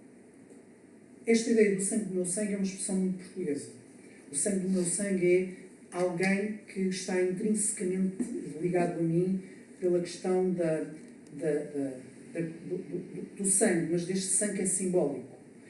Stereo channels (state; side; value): identical; both; correlation 1.00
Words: Esta ideia do sangue do meu sangue é uma expressão muito portuguesa. O sangue do meu sangue é alguém que está intrinsecamente ligado a mim pela questão do sangue, mas deste sangue é simbólico.